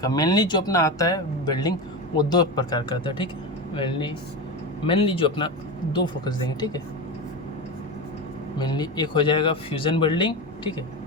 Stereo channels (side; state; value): both; normal; correlation 0.20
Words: मेनली जो अपना आता है वेल्डिंग वो दो प्रकार का आता है, ठीक है। मेनली जो अपना दो फोकस देंगे, ठीक है। मेनली एक हो जाएगा फ्यूज़न वेल्डिंग, ठीक है,